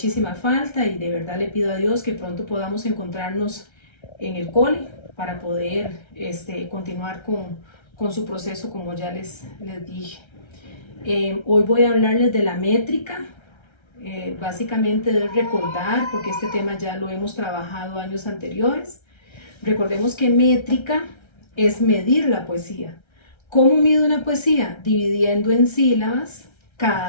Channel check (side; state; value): right; late; 1.3 ms